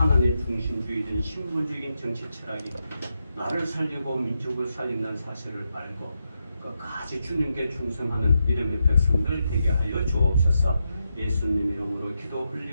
중심주의된 신본주의적인 정치 철학이 나를 살리고 민족을 살린다는 사실을 알고 끝까지 주님께 충성하는 믿음의 백성들 되게 하여 주옵소서. 예수님 이름으로 기도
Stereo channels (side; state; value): both; inverted; correlation -0.85